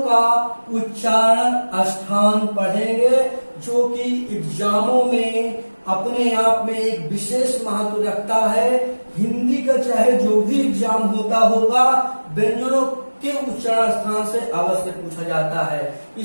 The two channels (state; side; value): inverted; both; correlation -1.00